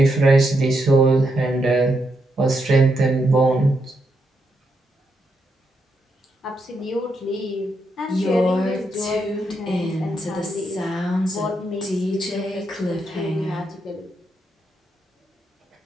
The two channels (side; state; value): both; normal; correlation 0.81